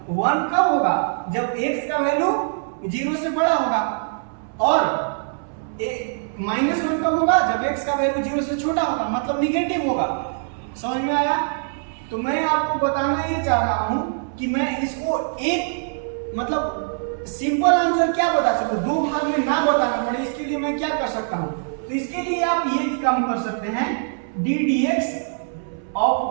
1 कब होगा, जब x का वैल्यू 0 से बड़ा होगा, और -1 कब होगा, जब x का वैल्यू 0 से छोटा होगा, मतलब निगेटिव होगा। समझ में आया। तो मैं आपको बताना ये चाह रहा हूं कि मैं इसको एक मतलब सिंपल आंसर क्या बता सकूं, दो भाग में ना बताना पड़े, इसके लिए मैं क्या कर सकता हूं। तो इसके लिए आप ये काम कर सकते हैं, d dx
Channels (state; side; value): silent; left; 64 dB below the other